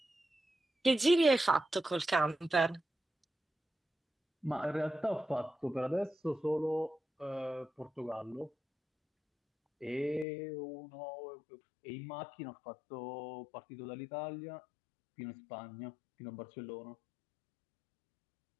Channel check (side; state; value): right; drops out; at 10.2 s